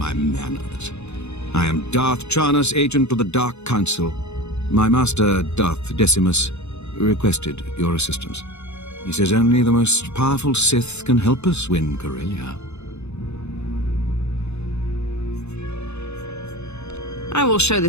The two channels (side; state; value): right; late; 0.81 ms